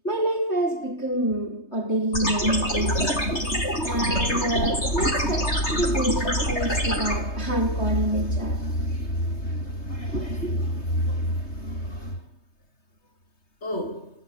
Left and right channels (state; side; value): late; right; 3.2 ms